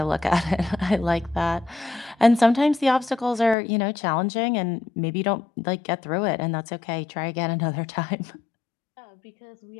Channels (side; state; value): right; drops out; at 3.6 s